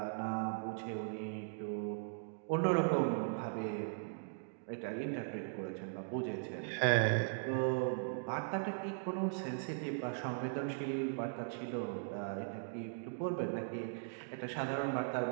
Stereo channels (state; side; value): silent; left; digital silence